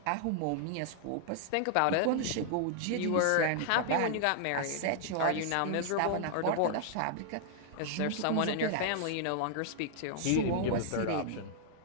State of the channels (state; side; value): different; both; correlation -0.01